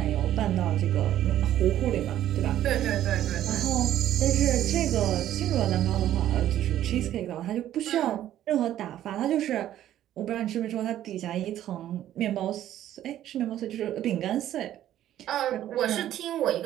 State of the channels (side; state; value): left; quieter; 12.2 dB